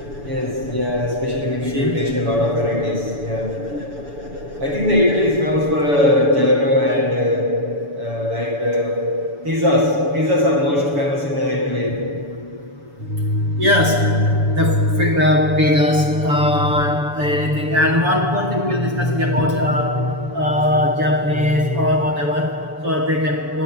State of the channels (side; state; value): left; late; 7.0 ms